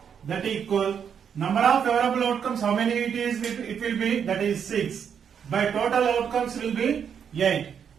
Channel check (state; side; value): quieter; left; 7.7 dB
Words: That equal number of favorable outcomes how many it is? It will be, that is 6. By total outcomes will be 8.